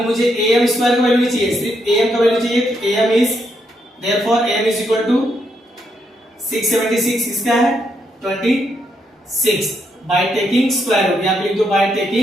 मुझे AM स्क्वायर का वैल्यू नहीं चाहिए, सिर्फ AM का वैल्यू चाहिए। तो AM is therefore AM is equal to 676, इसका है 26 बाय टेकिंग स्क्वायर रूट। यहाँ पे लिख दो by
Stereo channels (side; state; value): both; normal; correlation 0.78